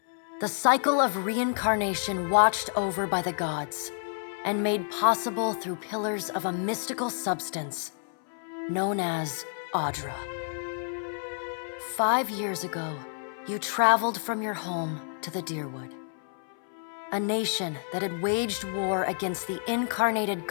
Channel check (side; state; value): right; silent; 58 dB below the other